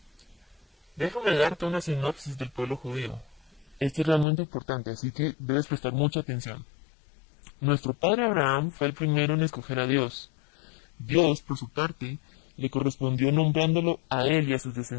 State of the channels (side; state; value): right; drops out; at 4.2 s